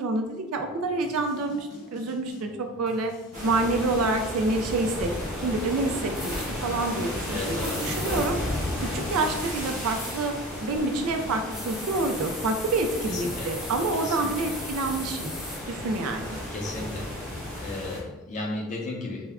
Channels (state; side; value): normal; both; correlation 0.33